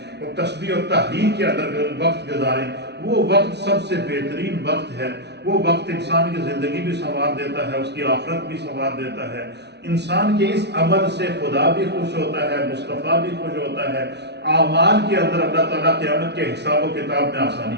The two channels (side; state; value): left; late; 0.50 ms